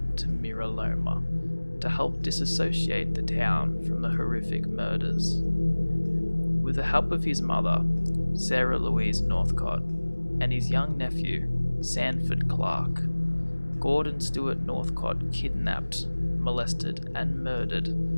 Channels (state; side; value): inverted; both; correlation -1.00